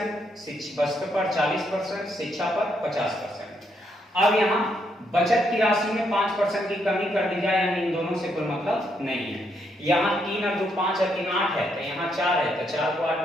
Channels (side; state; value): both; normal; correlation 0.76